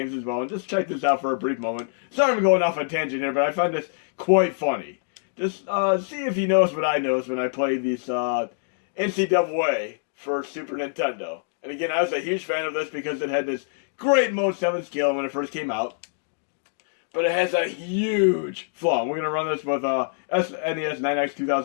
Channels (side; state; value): right; silent; digital silence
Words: as well. And just check this out for a brief moment. Sorry I'm going off on a tangent here, but I find this quite funny. Just see if you notice what I notice when I play these NCAA for Super Nintendo. And again, I was a huge fan of this because it had this great Mode 7 scale when it first came out. But it has a huge flaw. We're going to run this with SNES 9X